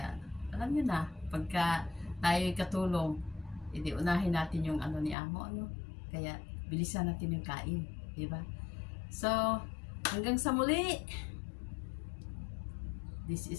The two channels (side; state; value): right; drops out; at 5.2 s